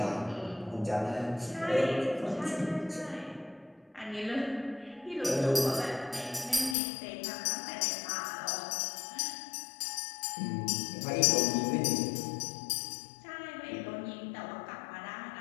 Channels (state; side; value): drops out; right; at 6.8 s